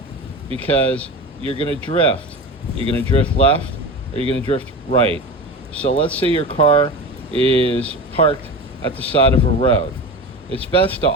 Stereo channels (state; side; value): normal; both; correlation 0.29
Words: because you're going to drift. You're going to drift left or you're going to drift right. So let's say your car is parked at the side of a road. It's best to